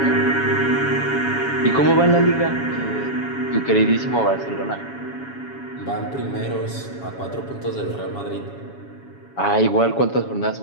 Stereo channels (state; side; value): late; right; 7.2 ms